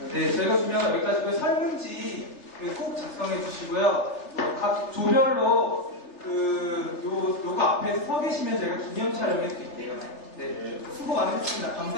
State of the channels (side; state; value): right; late; 3.3 ms